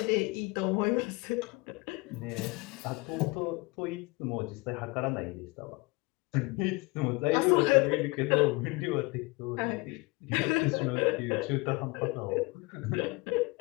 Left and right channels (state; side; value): quieter; right; 25.1 dB